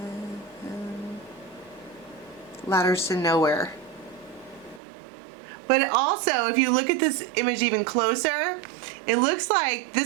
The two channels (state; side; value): drops out; left; at 4.8 s